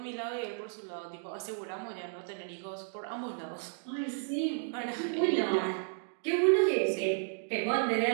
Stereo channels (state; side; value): silent; left; digital silence